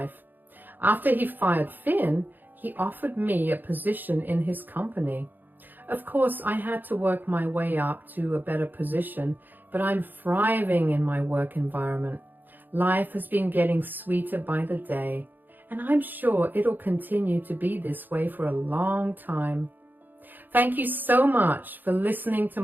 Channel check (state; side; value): late; left; 0.088 ms